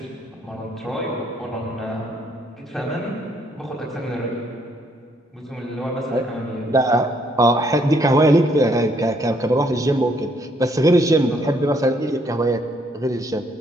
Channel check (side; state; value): both; normal; correlation 0.69